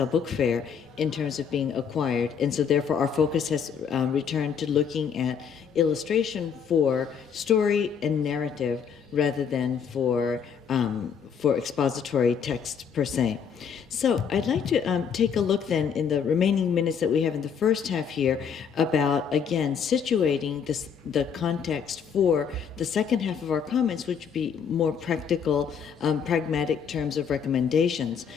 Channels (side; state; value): right; quieter; 7.1 dB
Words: Book Fair in terms of being acquired, and so therefore our focus has returned to looking at illustration for story and narrative rather than for expository text per se. So I'd like to take a look then in the remaining minutes that we have in the first half here about, again, situating the context for the second half of our comments, which would be more practical, pragmatic terms of recommendations.